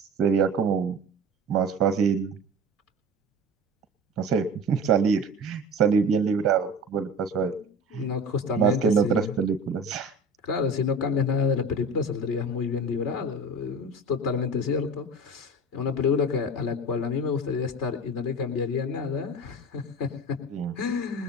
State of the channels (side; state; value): both; normal; correlation 0.36